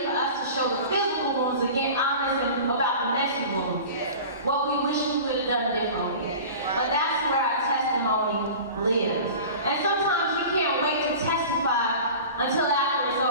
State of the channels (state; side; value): inverted; both; correlation -0.37